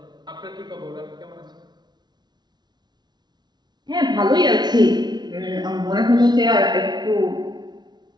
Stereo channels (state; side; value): late; left; 0.20 ms